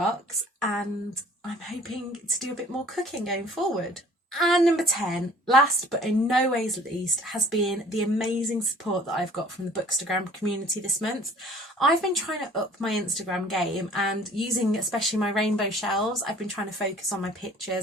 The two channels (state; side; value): normal; both; correlation 0.51